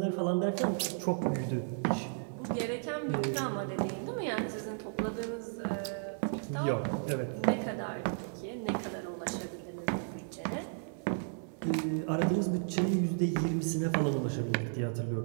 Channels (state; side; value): silent; left; 55 dB below the other